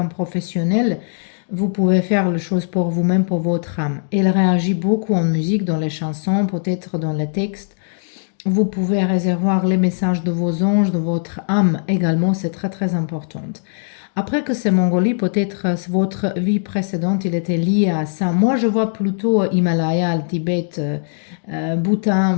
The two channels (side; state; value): right; silent; digital silence